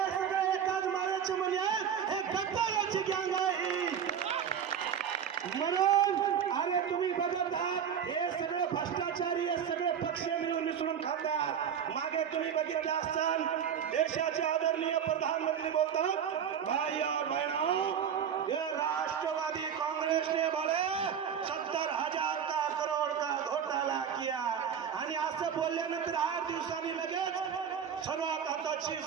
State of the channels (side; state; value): left; quieter; 8.2 dB